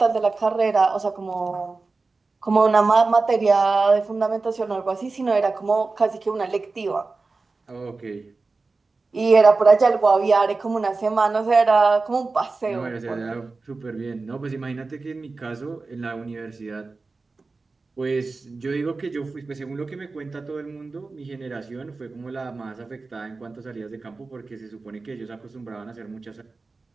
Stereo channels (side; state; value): left; quieter; 3.9 dB